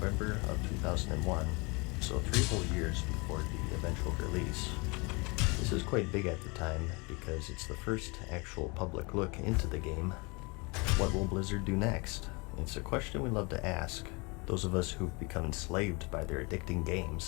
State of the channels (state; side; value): quieter; right; 28.7 dB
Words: of 2001, so 3 whole years before the eventual release. This is quite big at the time because it's the first actual public look into the game. What will Blizzard do next? It's a question we love to ask, those of us who've become enslaved by their addicting